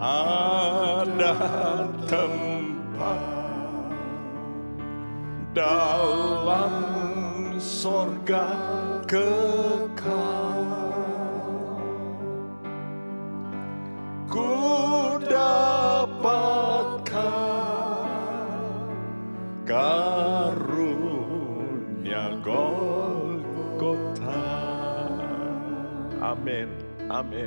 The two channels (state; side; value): inverted; both; correlation -1.00